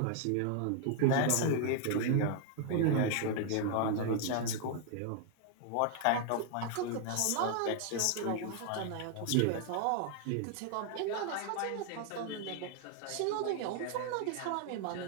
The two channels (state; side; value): different; both; correlation 0.00